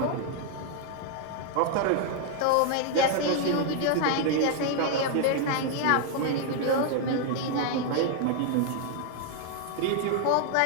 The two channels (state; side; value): different; both; correlation 0.00